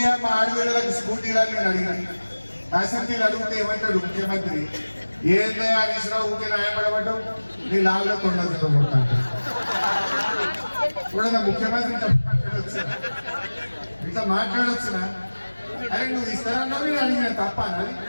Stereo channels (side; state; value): both; inverted; correlation -1.00